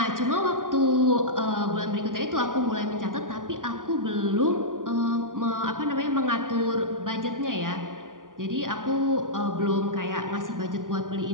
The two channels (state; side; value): late; left; 0.89 ms